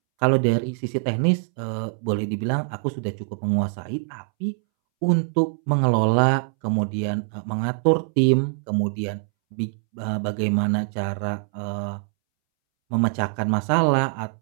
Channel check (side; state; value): left; silent; 63 dB below the other